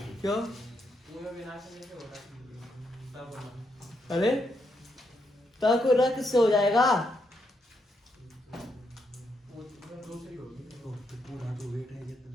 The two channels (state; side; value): normal; both; correlation 0.79